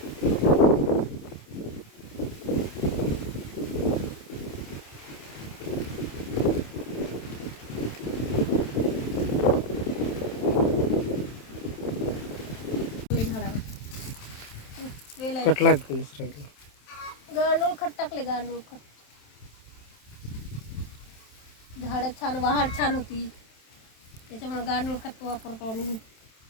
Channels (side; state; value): right; late; 27 ms